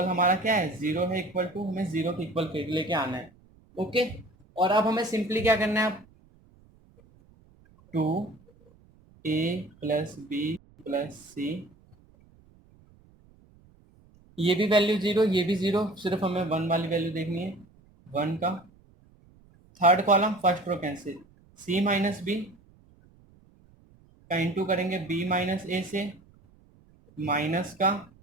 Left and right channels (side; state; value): right; noise; rumble, 29 dB below the sound